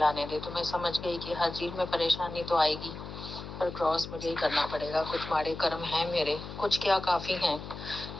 दे। तो मैं समझ गई कि हर चीज में परेशानी तो आएगी, पर क्रॉस मुझे ही करना पड़ेगा। कुछ माड़े कर्म हैं मेरे, कुछ क्या काफी हैं,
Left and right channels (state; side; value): noise; left; hum, 10 dB below the sound